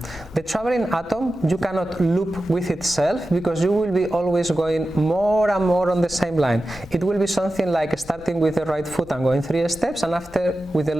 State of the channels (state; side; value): noise; left; rumble, 20 dB below the sound